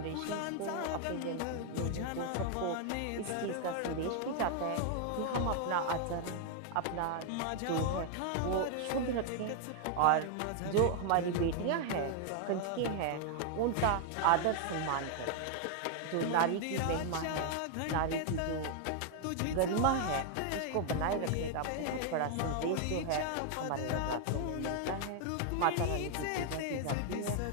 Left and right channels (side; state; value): both; different; correlation 0.00